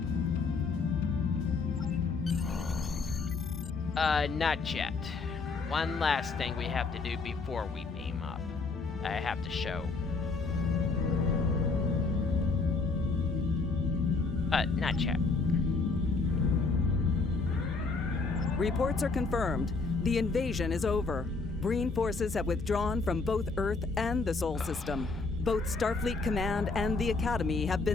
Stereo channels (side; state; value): right; quieter; 4.1 dB